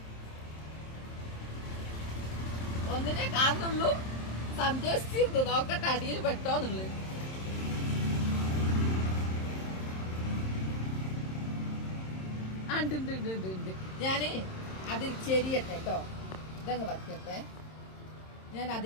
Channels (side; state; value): right; late; 27 ms